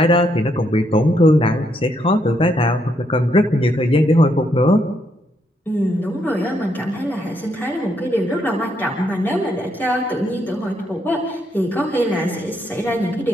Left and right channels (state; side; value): normal; both; correlation 0.75